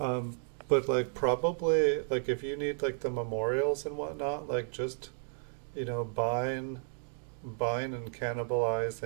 like probably like if you need like the memorials and whatnot, like just buying and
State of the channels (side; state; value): left; silent; 56 dB below the other